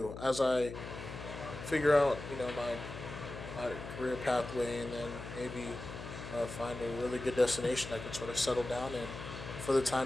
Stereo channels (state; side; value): noise; left; hum, 10 dB below the sound